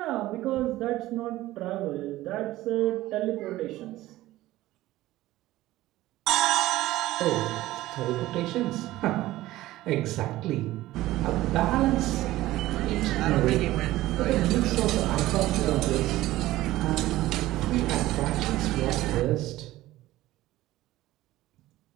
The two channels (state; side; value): quieter; left; 16.4 dB